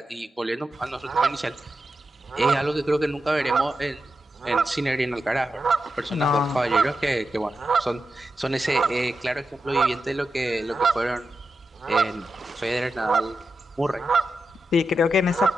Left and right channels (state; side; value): normal; both; correlation 0.89